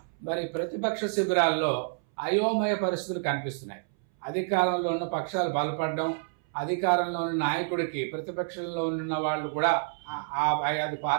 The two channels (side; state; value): left; silent; 59 dB below the other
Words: మరి ప్రతిపక్ష శిబిరాల్లో అయోమయ పరిస్థితులు కనిపిస్తున్నాయి. అధికారంలో ఉన్న పక్షాలు బలపడడం, అధికారంలో ఉన్న నాయకుడికి ప్రతిపక్షంలో ఉన్న వాళ్ళు కూడా ఆ 5